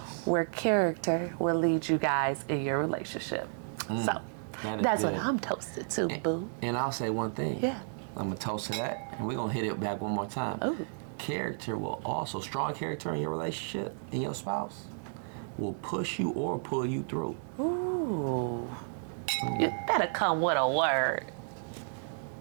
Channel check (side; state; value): left; silent; digital silence